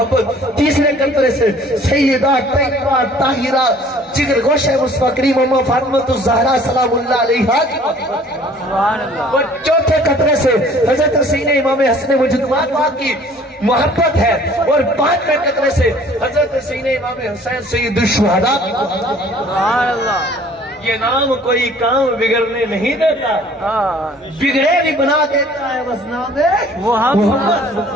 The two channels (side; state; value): both; normal; correlation 0.53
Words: تیسرے قطرے سے سیدہ طیبہ طاہرہ جگر گوشہ مصطفیٰ کریم اما فاطمہ الزہرا سلام اللہ علیہا کی محبت. اور چوتھے قطرے سے حضرت سیدنا امام حسن مجدد کی محبت ہے. اور 5ویں قطرے سے حضرت سیدنا امام حسین سید الشہداء کی محبت. سبحان اللہ. یہ نام کوئی کام بگڑنے نہیں دیتا, بگڑے بھی بنا دیتا ہے بس نام محمد صلی